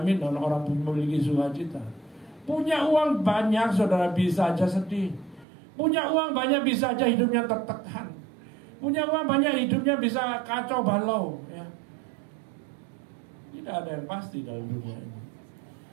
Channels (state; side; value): drops out; left; at 5.5 s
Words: orang memiliki sukacita. Punya uang banyak, saudara, bisa aja sedih. Punya uang banyak, bisa aja hidupnya tertekan. Punya uang banyak, hidupnya bisa kacau balau, ya. Tidak ada yang pasti dalam dunia ini.